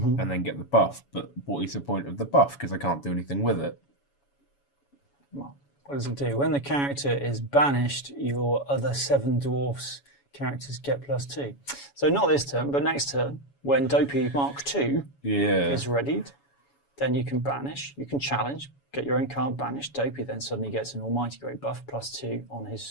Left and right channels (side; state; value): right; late; 7.1 ms